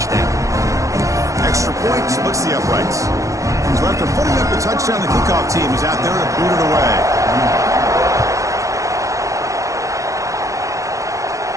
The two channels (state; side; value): late; left; 0.15 ms